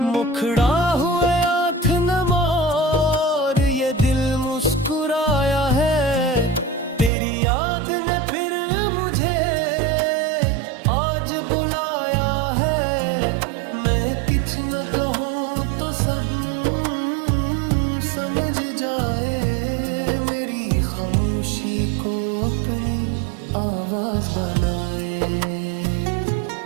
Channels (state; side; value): drops out; left; at 7.1 s